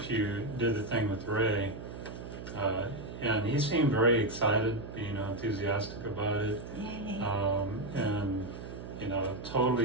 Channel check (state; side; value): noise; right; hum, 10 dB below the sound